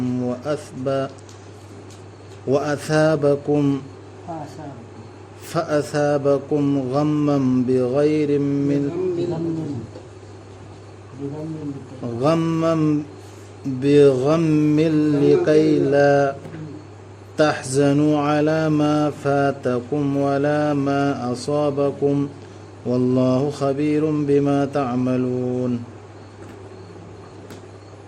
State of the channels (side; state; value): both; identical; correlation 1.00